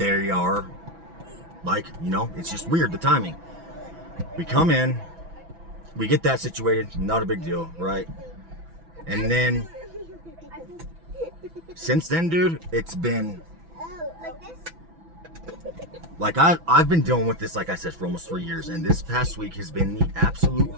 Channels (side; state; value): left; late; 6.0 ms